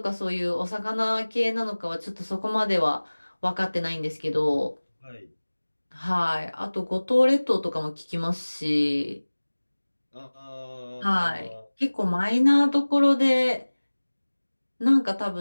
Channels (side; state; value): both; inverted; correlation -1.00